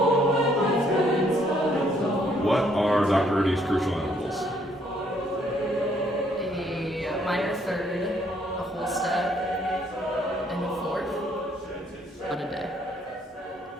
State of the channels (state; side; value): normal; both; correlation 0.67